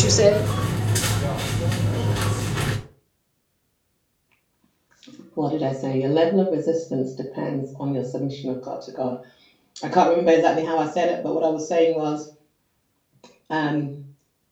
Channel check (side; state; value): both; identical; correlation 1.00